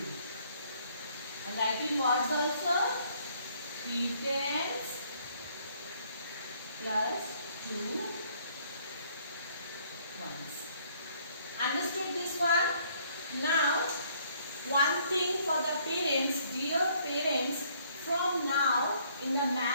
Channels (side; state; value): both; inverted; correlation -0.64